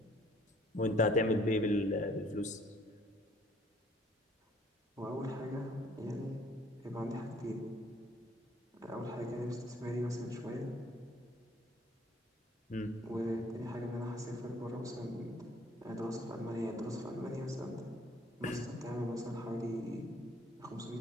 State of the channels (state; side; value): normal; both; correlation 0.59